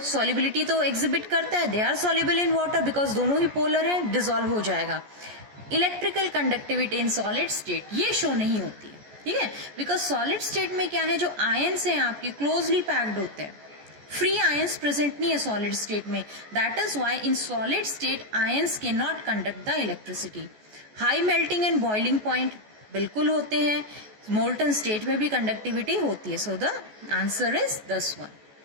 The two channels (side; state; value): left; late; 14 ms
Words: सॉल्युबिलिटी तो एग्जिबिट करता है, they are soluble in water because दोनों ही पोलर है, डिसॉल्व हो जाएगा। Electrical conductivity in solid state ये शो नहीं होती है, ठीक है, बिकॉज सॉलिड स्टेट में क्या है, जो आयंस हैं आपके क्लोजली पैक्ड होते हैं, फ्री आयंस प्रेजेंट नहीं है सॉलिड स्टेट में। That is why in solid state ions can not conduct the electricity. High melting and boiling point बिल्कुल होते हैं, मोल्टन स्टेट में भी कंडक्टिविटी होती है। So the answer is this